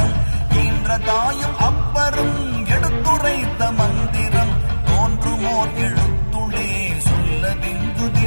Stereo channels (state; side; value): inverted; both; correlation -1.00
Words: ஈன்ற தாயும் அப்பரும் எடுத்துரைத்த மந்திரம், தோன்றுமோர் எழுத்துளே சொல்ல